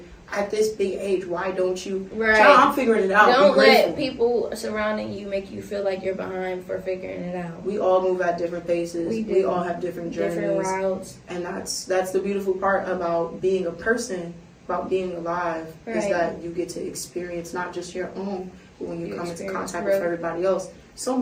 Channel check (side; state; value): both; identical; correlation 1.00